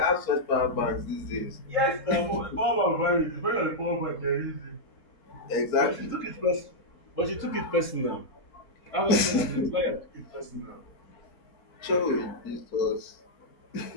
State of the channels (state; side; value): late; right; 4.4 ms